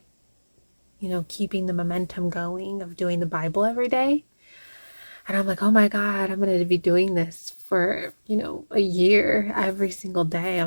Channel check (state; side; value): inverted; both; correlation -1.00